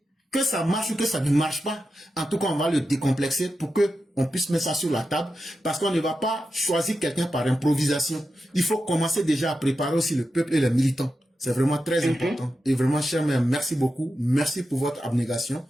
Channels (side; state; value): both; normal; correlation 0.90